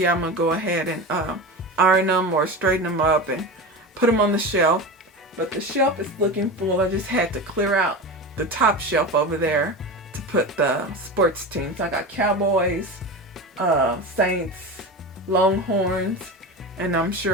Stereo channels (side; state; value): both; normal; correlation 0.26